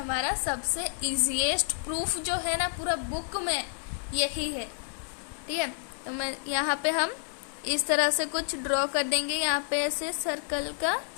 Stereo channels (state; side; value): silent; right; 58 dB below the other